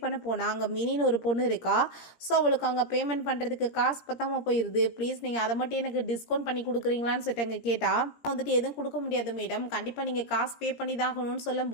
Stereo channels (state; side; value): late; right; 17 ms